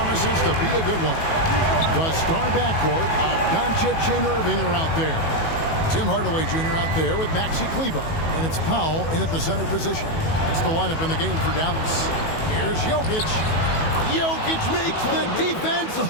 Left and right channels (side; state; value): right; late; 18 ms